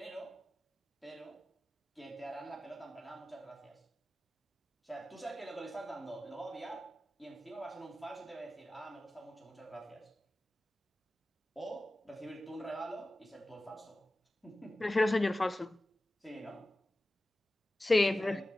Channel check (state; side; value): normal; both; correlation 0.95